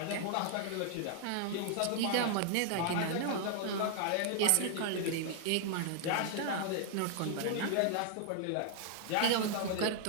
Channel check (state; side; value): different; both; correlation 0.00